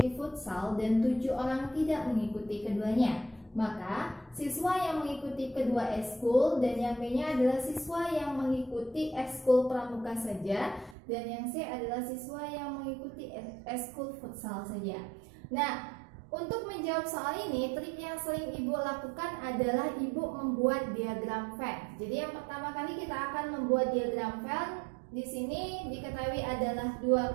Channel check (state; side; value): drops out; left; at 11.0 s